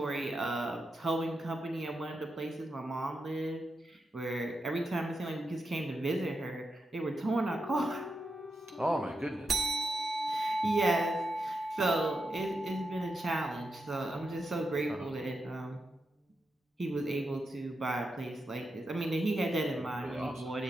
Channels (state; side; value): normal; both; correlation 0.87